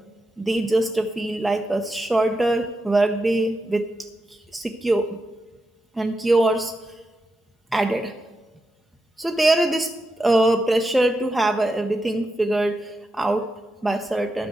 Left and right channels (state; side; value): normal; both; correlation 0.87